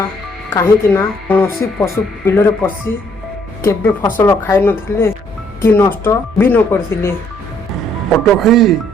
କାହିଁକି ନା କୌଣସି ପଶୁ ବିଲରେ ପଶି କେବେ ଫସଲ ଖାଇନଥିଲେ କି ନଷ୍ଟ ବି ନ କରିଥିଲେ।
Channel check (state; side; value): normal; both; correlation 0.66